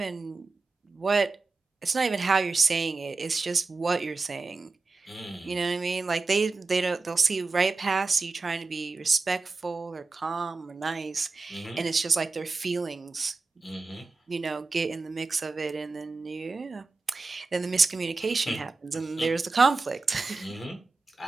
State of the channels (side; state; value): left; quieter; 3.8 dB